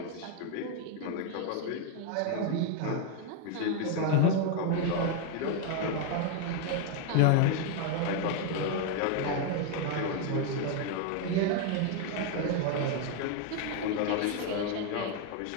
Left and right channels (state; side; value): different; both; correlation 0.01